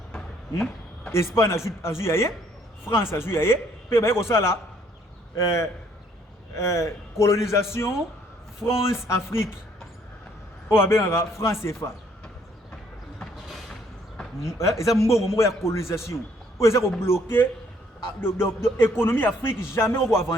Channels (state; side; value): normal; both; correlation 0.65